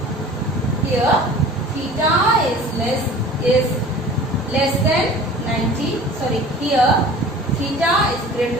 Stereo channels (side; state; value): both; normal; correlation 0.43